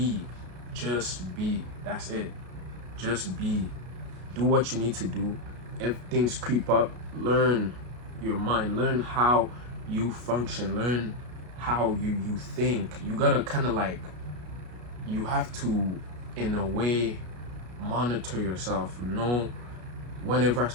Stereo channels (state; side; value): late; left; 33 ms